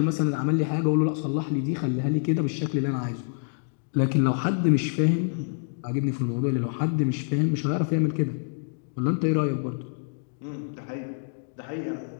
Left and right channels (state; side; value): silent; right; 60 dB below the other